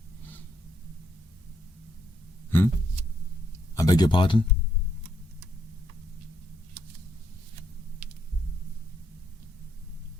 I beg your pardon?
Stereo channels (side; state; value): both; normal; correlation 0.75